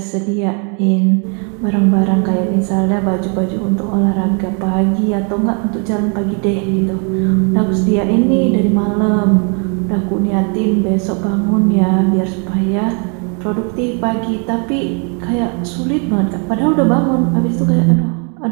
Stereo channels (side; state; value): left; quieter; 37.4 dB